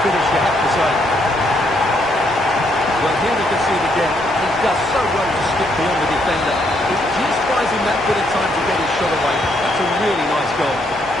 finish, you have to say. Well, here we can see it again. He does so well to skip beyond the defender. It just buys him that bit of time to get his shot away. That's a really nice goal.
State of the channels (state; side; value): normal; both; correlation 0.73